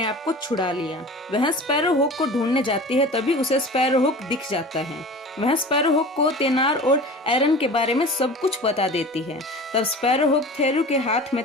आप को छुड़ा लिया। वह स्पैरोहुक को ढूंढने जाती है, तभी उसे स्पैरोहुक दिख जाता है। वह स्पैरोहुक को तेनार और एरन के बारे में सब कुछ बता देती है। तब स्पैरोहुक थेरू के हाथ में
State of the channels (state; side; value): normal; both; correlation 0.37